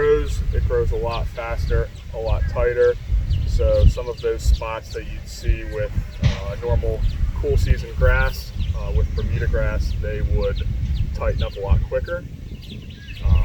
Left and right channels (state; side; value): identical; both; correlation 1.00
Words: it grows a lot faster, a lot tighter. So some of those spots that you'd see with normal cool season grass, with Bermuda grass, they would tighten up a lot quicker.